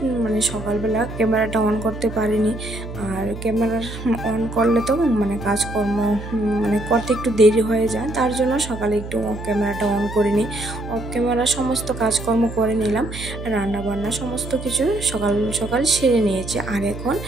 মানে সকালবেলা ক্যামেরাটা অন করতে পারিনি, আর ক্যামেরা অন করলে তো মানে কাজকর্ম মানে করতে একটু দেরি হয়ে যায়, তার জন্য সকালে একটু ক্যামেরাটা অন করিনি। অফ ক্যামেরা সমস্ত কাজকর্ম করে নিলাম, রান্না বান্না সমস্ত কিছু সকাল সকাল সেরে নিয়েছি। আর এখন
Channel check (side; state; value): right; noise; hum, 10 dB below the sound